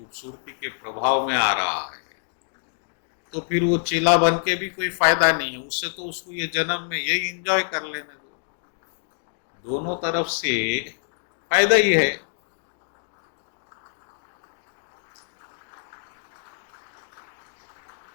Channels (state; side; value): silent; right; digital silence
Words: के प्रभाव में आ रहा है, तो फिर वो चेला बन के भी कोई फायदा नहीं है, उससे तो उसको ये जन्म में यही एंजॉय कर लेने दो। दोनों तरफ से फायदा ही है।